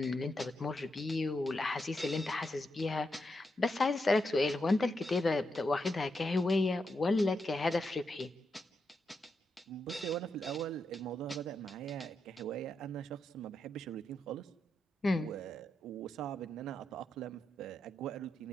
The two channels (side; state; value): both; normal; correlation 0.84